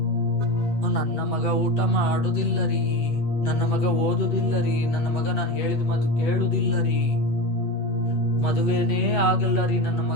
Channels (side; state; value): right; late; 8.4 ms